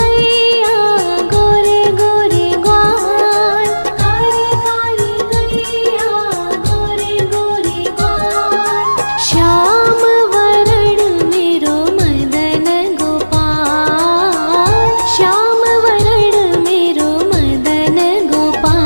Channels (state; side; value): inverted; both; correlation -1.00